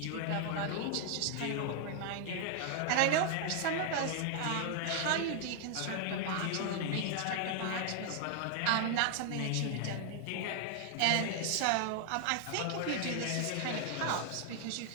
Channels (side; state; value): both; different; correlation 0.00